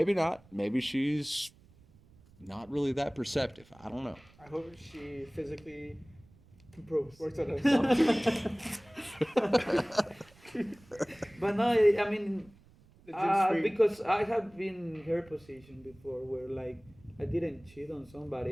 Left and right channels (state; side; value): noise; right; rumble, 27 dB below the sound